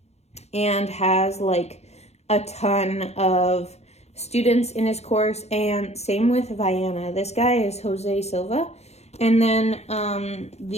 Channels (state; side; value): late; right; 0.31 ms